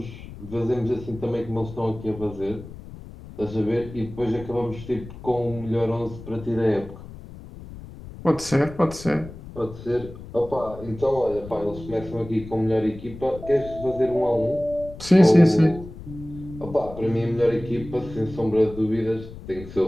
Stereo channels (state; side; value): noise; left; rumble, 14 dB below the sound